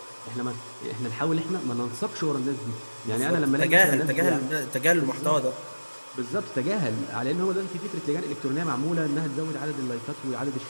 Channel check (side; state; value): both; inverted; correlation -1.00